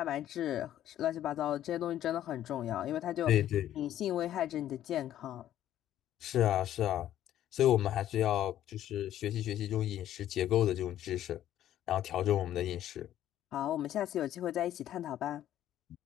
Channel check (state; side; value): quieter; right; 12.0 dB